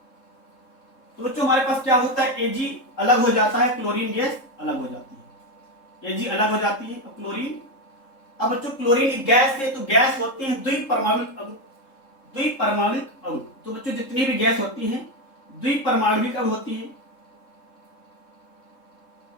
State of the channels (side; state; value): right; late; 3.7 ms